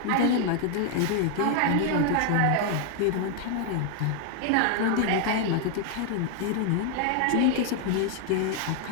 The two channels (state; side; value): different; both; correlation 0.00